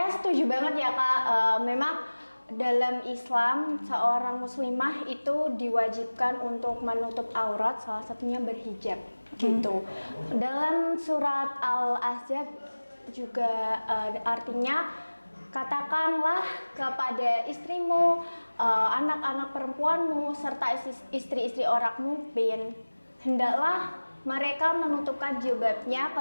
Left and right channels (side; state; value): both; inverted; correlation -1.00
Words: setuju banget ya, Kak. Memang dalam Islam seorang muslimah itu diwajibkan untuk menutup aurat, salah satunya berhijab gitu. Dalam surat Al-Ahzab juga artinya katakanlah kepada istrimu, anak-anak perempuanmu serta istri-istri orangmu, hendaklah mereka menutupkan jilbabnya